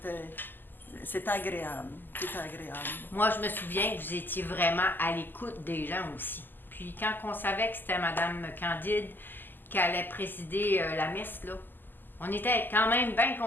agréable. C'était agréable. Moi, je me souviens que vous étiez vraiment à l'écoute des gens aussi. Puis quand on savait que c'était Madame Candide qui allait présider la messe, là, On était quand même bien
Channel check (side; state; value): right; late; 0.091 ms